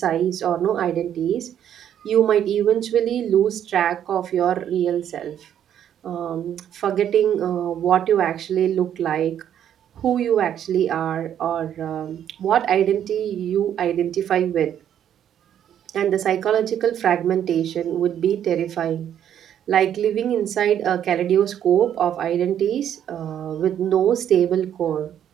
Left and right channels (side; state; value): left; quieter; 9.9 dB